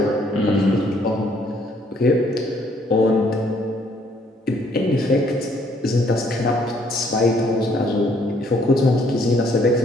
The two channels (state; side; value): normal; both; correlation 0.65